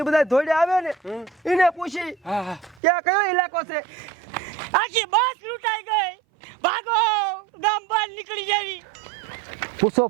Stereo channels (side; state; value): left; drops out; at 2.8 s